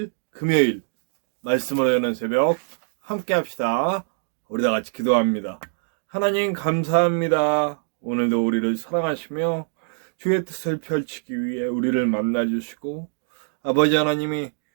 금요일 말씀으로 여는 새벽 함께 합시다. 우리 다 같이 기도합니다. 하나님 감사합니다. 오늘도 우리를 사랑하시며 주의 뜻을 펼치기 위해 우리를 만나주시고, 아버지 하나님이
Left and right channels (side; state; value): left; silent; digital silence